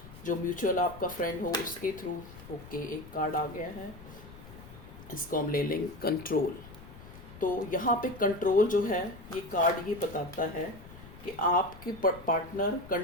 जो म्यूचुअल आपका फ्रेंड हो उसके थ्रू। ओके, एक कार्ड आ गया है, इसको हम ले लेंगे कंट्रोल। तो यहाँ पे कंट्रोल जो है ये कार्ड ये बताता है कि आपके पार्टनर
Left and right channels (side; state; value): left; noise; rumble, 17 dB below the sound